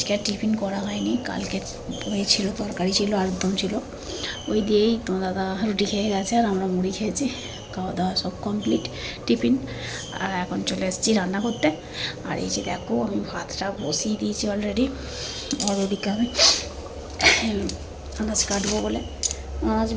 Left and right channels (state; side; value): identical; both; correlation 1.00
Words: আর টিফিন করা হয়নি। কালকে ওই ছিল, তরকারি ছিল, আলুর দম ছিল, ওই দিয়েই তোমার দাদা রুটি খেয়ে গেছে আর আমরা মুড়ি খেয়েছি। খাওয়া দাওয়া সব কমপ্লিট, টিফিন। আর এখন চলে এসেছি রান্না করতে। আর এই যে দেখো, আমি ভাতটা বসিয়ে দিয়েছি অলরেডি। আর ওদিকে আমি আনাজ কাটবো বলে আনাজ